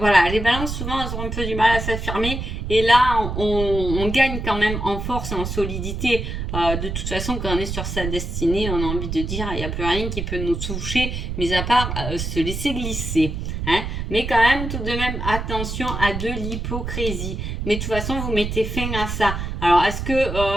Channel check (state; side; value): noise; right; rumble, 4 dB below the sound